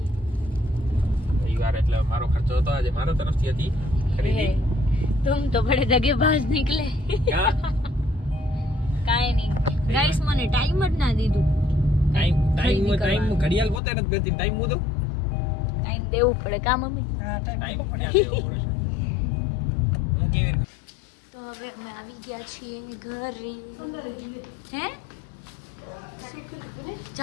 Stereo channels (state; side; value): drops out; right; at 13.8 s